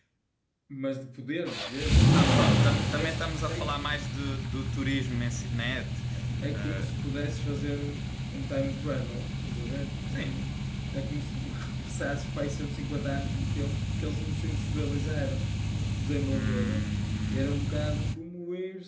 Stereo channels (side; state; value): both; identical; correlation 1.00